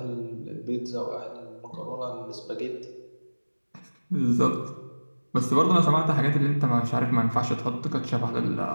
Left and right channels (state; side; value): inverted; both; correlation -1.00